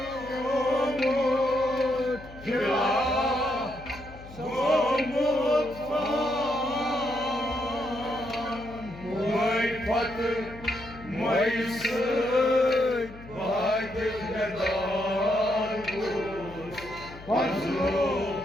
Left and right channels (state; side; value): noise; left; hum, 17 dB below the sound